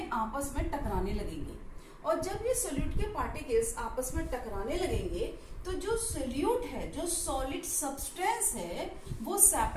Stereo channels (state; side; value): identical; both; correlation 1.00